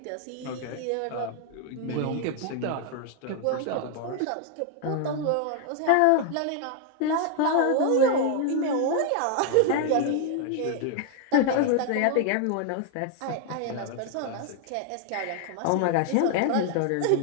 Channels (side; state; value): both; different; correlation 0.00